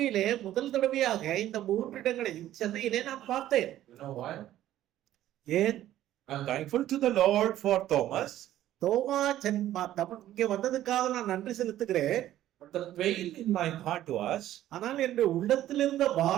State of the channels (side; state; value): left; quieter; 13.1 dB